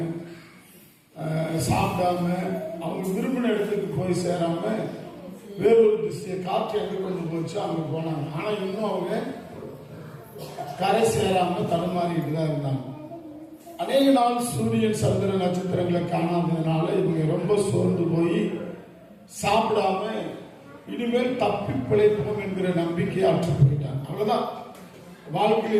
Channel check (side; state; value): both; identical; correlation 1.00